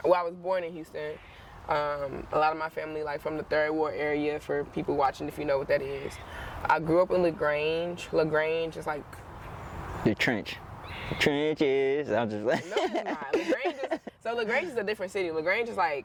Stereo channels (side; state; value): both; identical; correlation 1.00